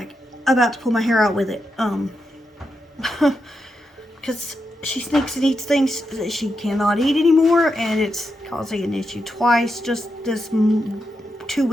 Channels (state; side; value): normal; both; correlation 0.85